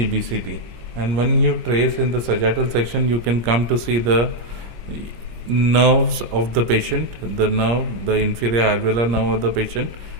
And when you trace in the sagittal section, you can come to see the nerves of the patient, the nerve, the inferior alveolar nerve of the patient,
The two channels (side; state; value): left; late; 26 ms